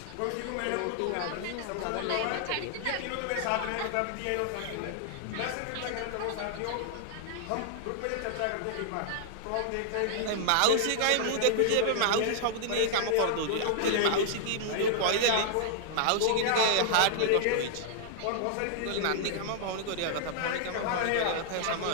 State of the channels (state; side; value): different; both; correlation -0.01